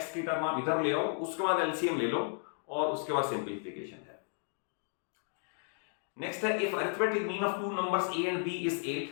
की term आप इधर ले आओ, उसके बाद एलसीएम ले लो, और उसके बाद सिंपलीफिकेशन है। नेक्स्ट है, if arithmetic mean of two numbers a and b is 8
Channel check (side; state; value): right; silent; 55 dB below the other